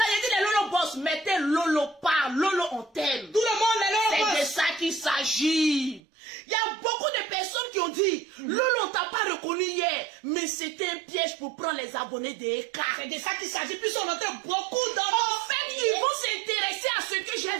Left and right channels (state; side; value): drops out; left; at 6.0 s